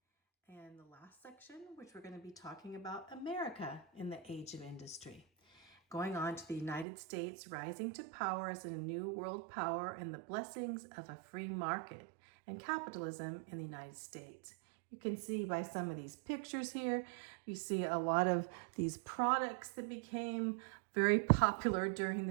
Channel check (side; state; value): left; drops out; at 6.9 s